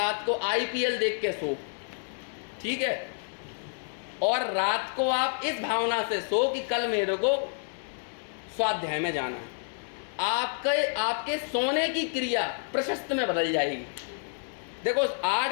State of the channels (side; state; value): right; silent; 56 dB below the other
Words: को IPL देख के सो, ठीक है, और रात को आप इस भावना से सो कि कल मेरे को स्वाध्याय में जाना है। आपके सोने की क्रिया प्रशस्त में बदल जाएगी। देखो 8